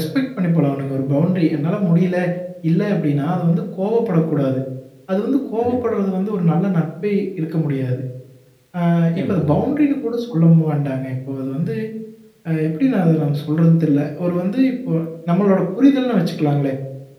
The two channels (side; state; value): both; identical; correlation 1.00